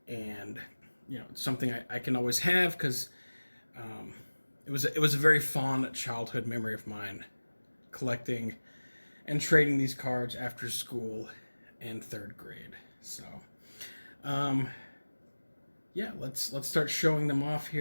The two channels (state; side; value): inverted; both; correlation -1.00